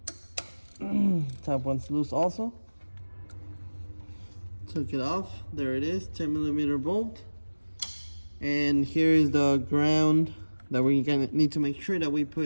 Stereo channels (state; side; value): inverted; both; correlation -1.00